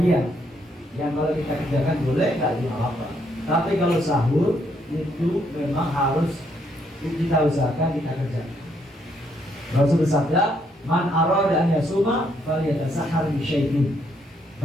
yang kalau kita kerjakan boleh, gak apa-apa. Tapi kalau sahur itu memang harus kita usahakan kita kerjakan. Rasul bersabda, man arada an yasuma falyatasahhar bi syai'in.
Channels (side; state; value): both; normal; correlation 0.73